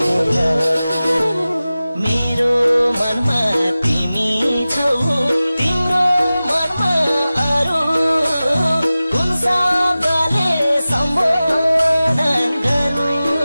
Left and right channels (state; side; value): inverted; both; correlation -0.96